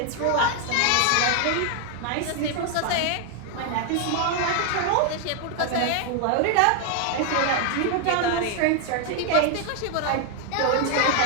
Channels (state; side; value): different; both; correlation 0.00